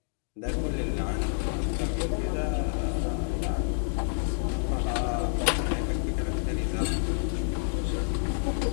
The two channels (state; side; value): silent; right; digital silence